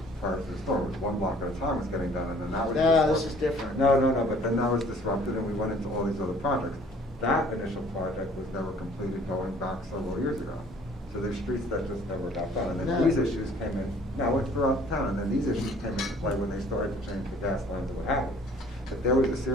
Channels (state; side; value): normal; both; correlation 0.55